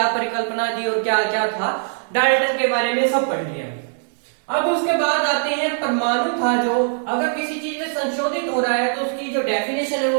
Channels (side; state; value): left; silent; digital silence